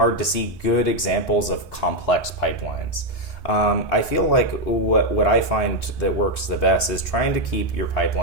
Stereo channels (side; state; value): both; normal; correlation 0.03